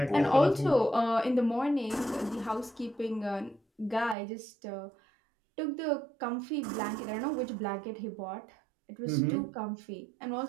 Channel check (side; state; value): left; drops out; at 4.2 s